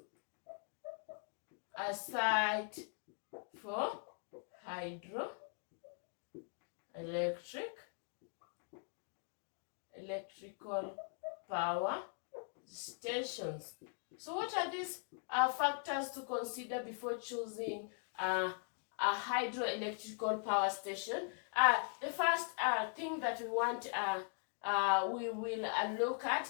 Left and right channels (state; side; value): silent; right; 51 dB below the other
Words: a site for electrical power stations? So what are these factors to consider before choosing a hydroelectrical power station? The first thing that we will look